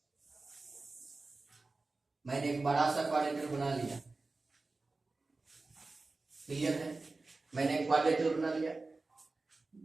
मैंने एक बड़ा सा क्वाड्रिलेटरल बना लिया. क्लियर है? मैंने एक क्वाड्रिलेटरल बना लिया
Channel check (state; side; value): quieter; left; 3.5 dB